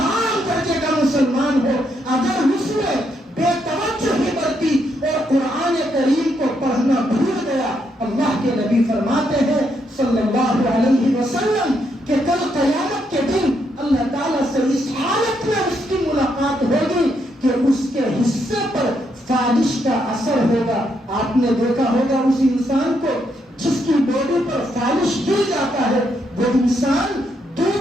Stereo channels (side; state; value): both; normal; correlation 0.77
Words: درجے کا مسلمان ہو، اگر اس نے بے توجہی برتی اور قرآن کریم کو پڑھنا بھول گیا، اللہ کے نبی فرماتے ہیں صلی اللہ علیہ وسلم کہ کل قیامت کے دن اللہ تعالیٰ سے اس حالت میں اس کی ملاقات ہوگی کہ اس کے حصے پر فالش کا اثر ہوگا۔ آپ نے دیکھا ہوگا اس انسان کو جس کی باڈی پر فالش گر جاتا ہے، وہ انسان